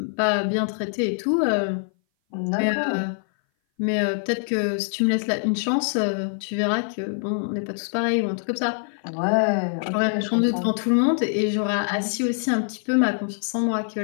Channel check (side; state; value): right; silent; 58 dB below the other